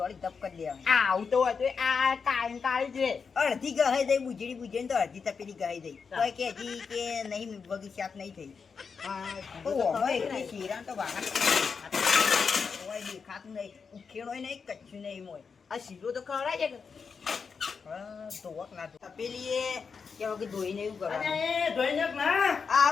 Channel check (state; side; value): quieter; right; 5.6 dB